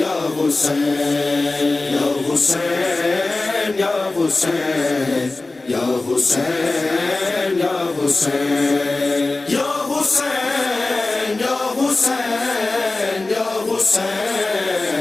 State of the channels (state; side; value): quieter; right; 3.2 dB